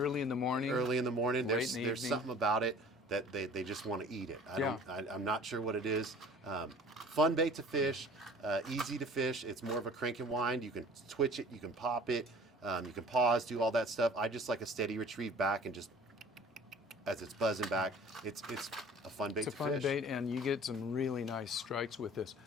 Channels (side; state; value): both; normal; correlation 0.47